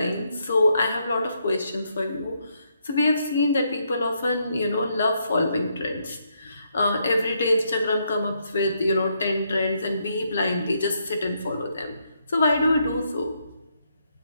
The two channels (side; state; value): both; inverted; correlation -0.76